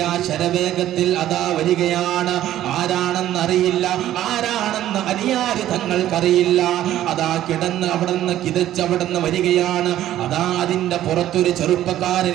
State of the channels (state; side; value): quieter; left; 12.8 dB